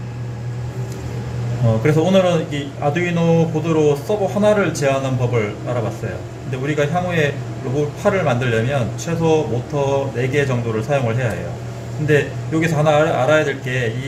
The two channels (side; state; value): both; identical; correlation 1.00